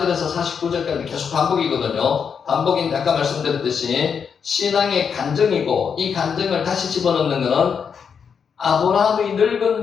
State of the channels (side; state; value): right; quieter; 6.7 dB